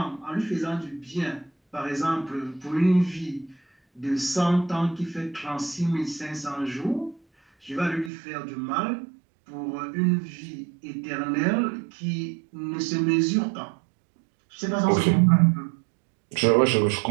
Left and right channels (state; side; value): drops out; left; at 8.1 s